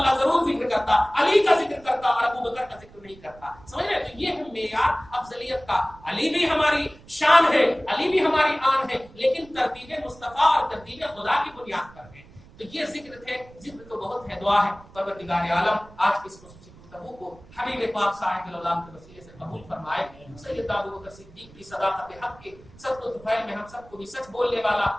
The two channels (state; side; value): noise; right; rumble, 22 dB below the sound